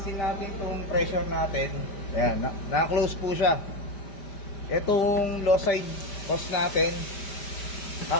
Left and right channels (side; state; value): right; late; 5.1 ms